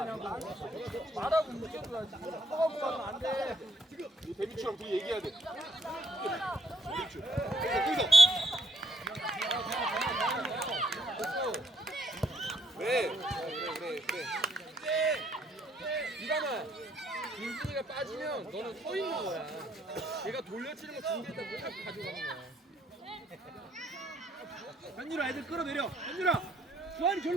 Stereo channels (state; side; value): normal; both; correlation 0.70